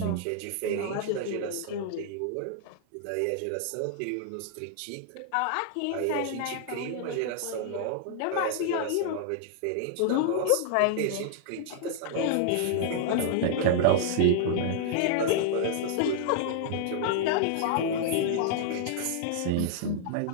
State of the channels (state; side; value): different; both; correlation -0.01